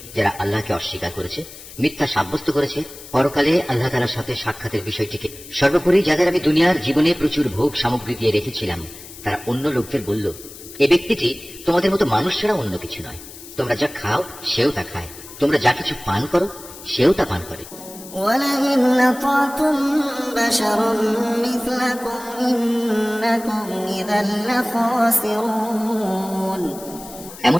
যারা আল্লাহকে অস্বীকার করেছে, মিথ্যা সাব্যস্ত করেছে, পরকালে আল্লাহ তাআলার সাথে সাক্ষাতের বিষয়টিকে, সর্বোপরি যাদের আমি দুনিয়ার জীবনে প্রচুর ভোগ সামগ্রী দিয়ে রেখেছিলাম, তারা অন্য লোকদের বলল, এ ব্যক্তিটি তোমাদের মতো মানুষ ছাড়া অন্য কিছু নয়। তোমরা যা খাও সেও তা খায়, তোমরা যা কিছু পান করো সেও তা পান করে। ولئن أطعتم بشرا مثلكم إنكم إذا لخاسرون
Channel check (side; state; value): left; noise; hiss, 16 dB below the sound